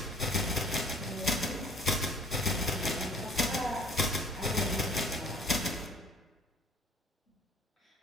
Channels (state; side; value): normal; both; correlation 0.52